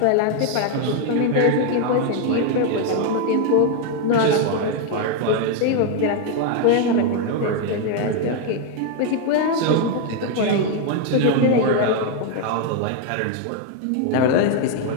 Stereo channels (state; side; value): different; both; correlation 0.01